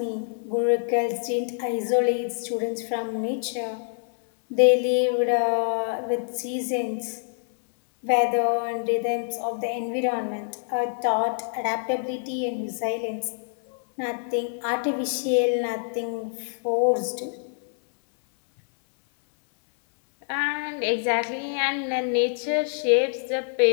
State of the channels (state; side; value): silent; right; 61 dB below the other